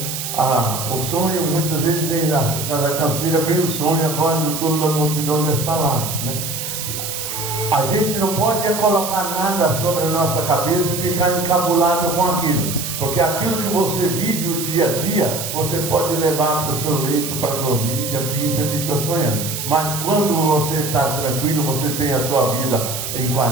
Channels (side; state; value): right; noise; hiss, 5 dB below the sound